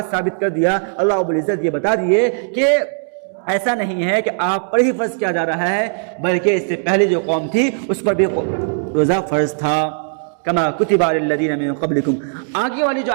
ثابت کر دیا، اللہ رب العزت یہ بتا دیے کہ ایسا نہیں ہے کہ آپ پر ہی فرض کیا جا رہا ہے، بلکہ اس سے پہلے جو قوم تھی اس پر بھی روزہ فرض تھا، کما کتب علی الذین من قبلکم۔ آگے والی جو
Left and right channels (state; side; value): silent; left; digital silence